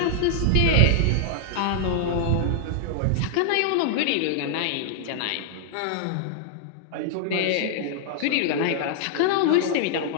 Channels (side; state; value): both; different; correlation -0.01